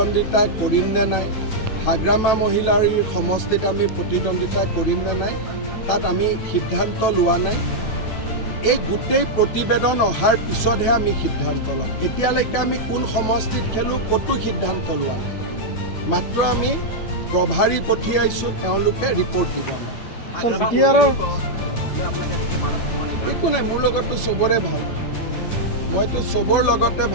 কৰিম নে নাই, হাগ্ৰামা মহিলাৰ সমষ্টিত আমি প্ৰতিদ্বন্দ্বিতা কৰিম নে নাই, তাত আমি সিদ্ধান্ত লোৱা নাই। এই গোটেই প্ৰতিবেদন অহাৰ পিছতহে আমি সিদ্ধান্ত ল'ম। এতিয়ালৈকে আমি কোন সমষ্টিত খেলোঁ ক'তো সিদ্ধান্ত লোৱা নাই। মাত্ৰ আমি প্ৰভাৰী পঠিয়াইছোঁ, তেওঁলোকে ৰিপৰ্ট দিব আমাক। একো নাই, মোৰ লগতো চবৰে ভাল, মইতো চবৰ লগতে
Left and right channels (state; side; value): late; right; 9.2 ms